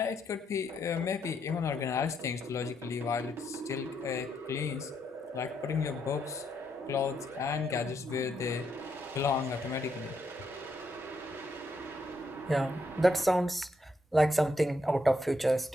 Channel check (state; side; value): normal; both; correlation 0.77